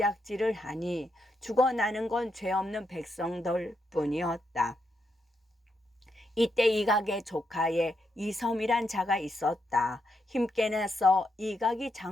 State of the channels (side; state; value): both; normal; correlation 0.81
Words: 하니 죽어나는 건 죄 없는 백성들 뿐이었다. 이때 이각의 조카에 이섬이란 자가 있었다. 힘께 내서 이각이